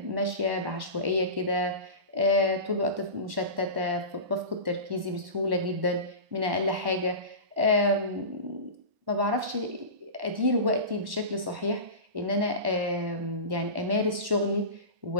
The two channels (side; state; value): left; late; 1.1 ms